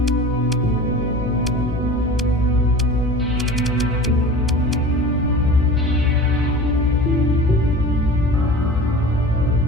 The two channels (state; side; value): normal; both; correlation 0.38